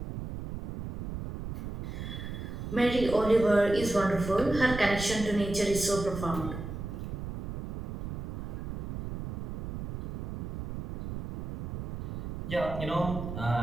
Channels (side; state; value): right; noise; rumble, 6 dB below the sound